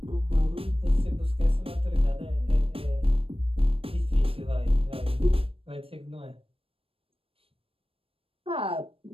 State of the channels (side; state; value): left; late; 0.27 ms